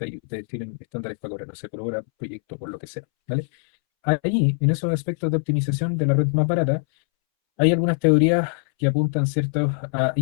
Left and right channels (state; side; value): silent; right; 64 dB below the other